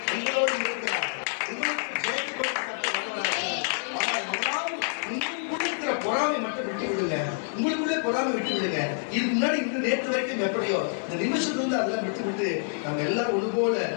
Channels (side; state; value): right; silent; digital silence